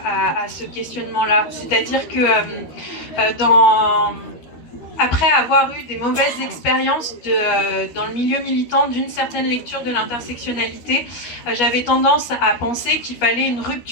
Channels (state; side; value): late; right; 13 ms